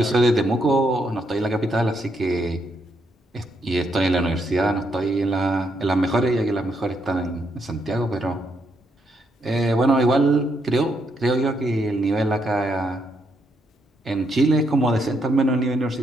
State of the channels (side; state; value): both; normal; correlation 0.77